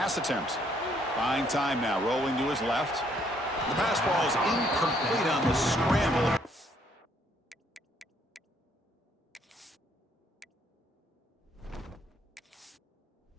attempt. Buying time now, rolling to his left. The pass ball is incomplete on the scramble.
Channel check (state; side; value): normal; both; correlation 0.68